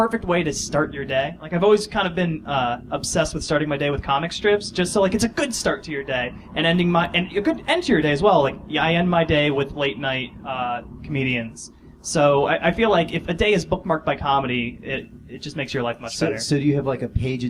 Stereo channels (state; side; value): identical; both; correlation 1.00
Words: way to start your day. Like, I've always kind of been obsessed with starting my day with comic strips, just so, like, it's a good start to your day, and a good end to your day as well. Like, yeah, I end my day with late night comedians. So I feel like if a day is bookmarked by comedy, it just makes your life much better. So do you have like a page a